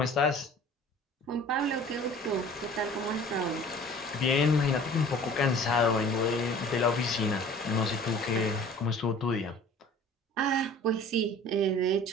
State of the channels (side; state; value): both; normal; correlation 0.46